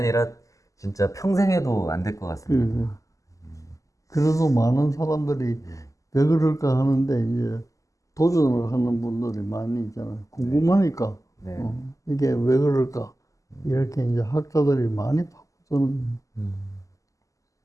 진짜 평생 해도 안 될 것 같습니다. 그래도 많은 사람들이 왜 그럴까 하는데 이제 도전을 하는 분들이 많이 있잖아요. 궁금하니까 네. 이게 왜 그럴까 이렇게 이제 학자들이 많이 파고드는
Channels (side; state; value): right; late; 0.16 ms